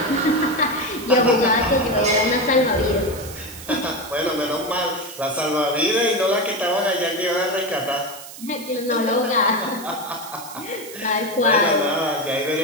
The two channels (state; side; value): noise; right; hiss, 14 dB below the sound